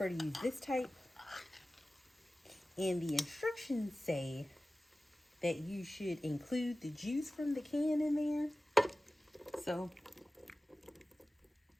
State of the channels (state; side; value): normal; both; correlation 0.96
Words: to use this type. And the instructions say that you should include the juice from the can in there. So